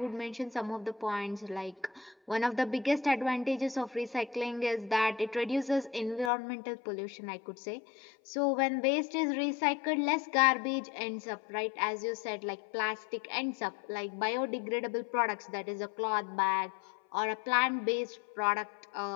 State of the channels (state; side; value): drops out; right; at 6.3 s